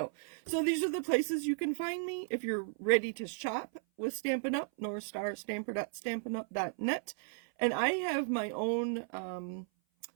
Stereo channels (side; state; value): left; silent; 54 dB below the other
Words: So these are the places you can find me if you're ready to shop with Stampin' Up! NorthStarStamper.StampinUp.net. And I have my own